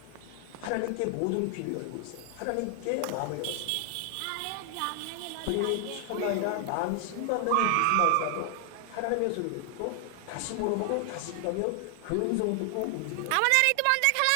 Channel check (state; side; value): different; both; correlation 0.00